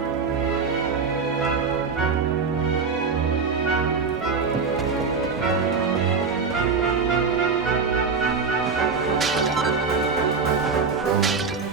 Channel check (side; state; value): left; quieter; 5.1 dB